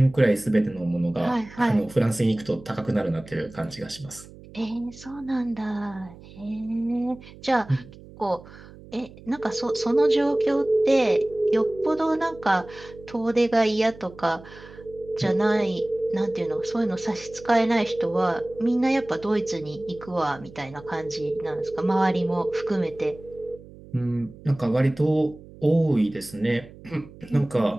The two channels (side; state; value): right; noise; hum, 19 dB below the sound